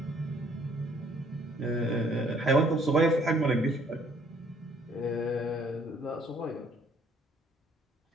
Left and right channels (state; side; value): normal; both; correlation 0.62